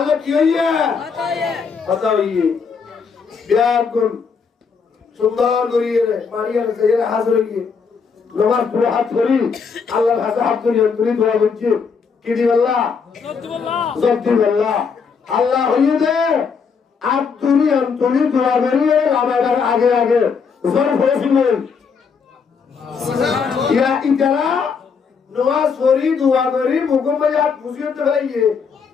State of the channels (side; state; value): right; quieter; 5.7 dB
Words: কি হইয়ে হতা হইয়ে বিয়াকুল সুন্দর করিয়ে মারিয়ার যাইয়ে হাজির হইয়ে নামাজ পড়ে হাত ধরি আল্লাহর কাছে হাত ধরি দোয়া করছি কি দি আল্লাহ সত্যি আল্লাহ আল্লাহ হইয়ে দে আব্দুরি আন্তরি দোয়া করিয়ে আমার আগে আগে জোর হয়েছিল ইয়া ইতারা नमाज पढ़ी दुआ करी मुकुम में यार खुशियों तो है ये